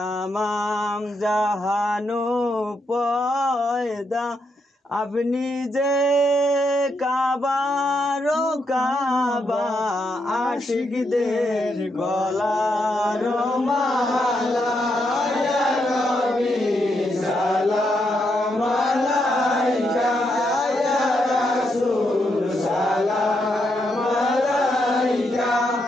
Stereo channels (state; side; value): normal; both; correlation 0.80